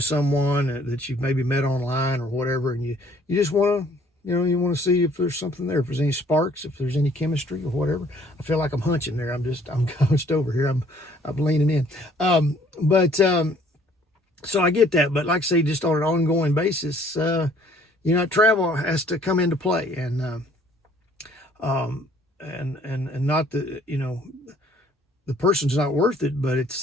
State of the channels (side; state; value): both; normal; correlation 0.59